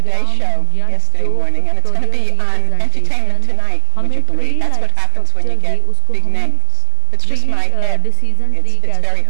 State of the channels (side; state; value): both; different; correlation 0.00